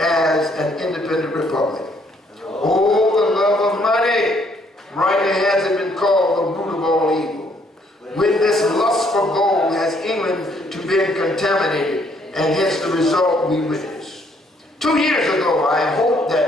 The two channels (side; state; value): both; normal; correlation 0.67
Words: an independent republic. Oh, the love of money! Rightly has it been called the root of all evil. With this lust for been contaminated, and hence the result we witnessed. 2 years ago, I hoped